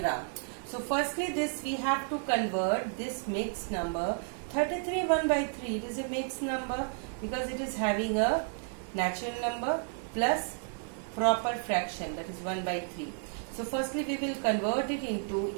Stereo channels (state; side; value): silent; left; 56 dB below the other